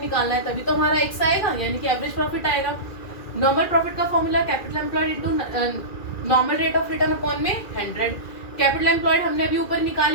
निकालना है, तभी तो हमारा x आएगा, यानी कि एवरेज प्रॉफिट आएगा। नॉर्मल प्रॉफिट का formula capital employed into normal rate of return upon में 100। कैपिटल एम्प्लॉयड हमने अभी ऊपर निकाल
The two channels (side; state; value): right; late; 2.4 ms